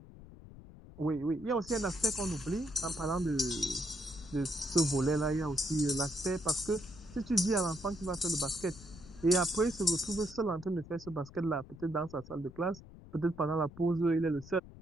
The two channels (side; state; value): left; noise; rumble, 18 dB below the sound